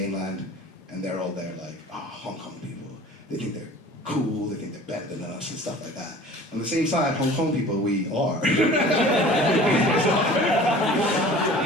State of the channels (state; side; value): normal; both; correlation 0.44